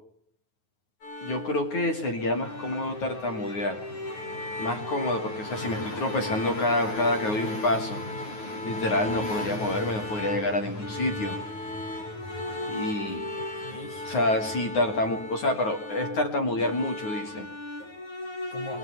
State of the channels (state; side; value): late; right; 9.5 ms